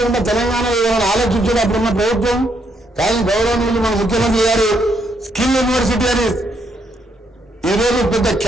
ఉన్న తెలంగాణలో ఏమైనా ఆలోచించడం అప్పుడున్న ప్రభుత్వం. కానీ గౌరవనీయులు మన ముఖ్యమంత్రి గారు స్కిల్ యూనివర్సిటీ అని ఈరోజు పెద్ద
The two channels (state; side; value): normal; both; correlation 0.74